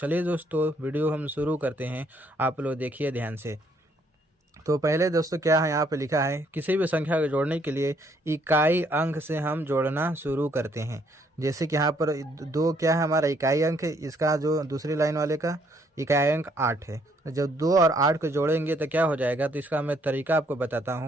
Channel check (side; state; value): both; normal; correlation 0.68